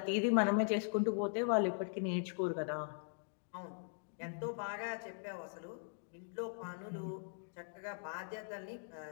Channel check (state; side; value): silent; right; digital silence